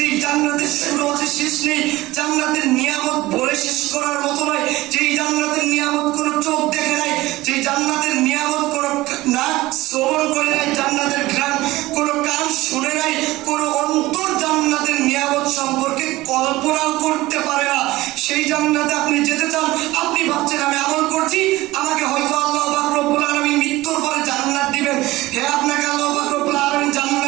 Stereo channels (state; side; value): quieter; left; 18.4 dB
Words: জান্নাতের শুরু আছে শেষ নেই, জান্নাতের নিয়ামত বলে শেষ করার মতো নয়, যেই জান্নাতের নিয়ামত কোনো চোখ দেখে নাই, যেই জান্নাতের নিয়ামত কোনো নাক শ্রবণ করে নাই, জান্নাতের ঘ্রাণ কোনো কান শুনে নাই, কোনো অন্তর জান্নাতের নিয়ামত সম্পর্কে কল্পনাও করতে পারে না। সেই জান্নাতে আপনি যেতে চান, আপনি ভাবছেন আমি আমল করছি, আমাকে হয়তো আল্লাহ পাক রব্বুল আলামিন মৃত্যুর পরে জান্নাত দিবেন। হ্যাঁ, আপনাকে আল্লাহ পাক রব্বুল আলামিন